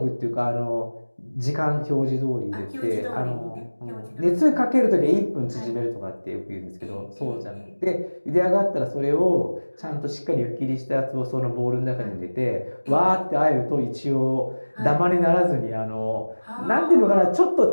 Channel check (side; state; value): both; inverted; correlation -1.00